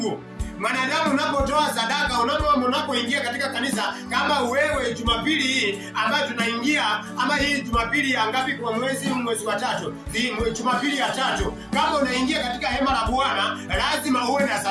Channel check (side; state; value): both; identical; correlation 1.00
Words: Mwanadamu unapotoa sadaka, unapoingia katika kanisa, kama wewe Jumapili hii ambayo tunaingia, ama hii Jumapili ya ngapi kwa mwezi wa 3, Jumapili ya 3, kama unaingia katika hema la Bwana lazima uwe na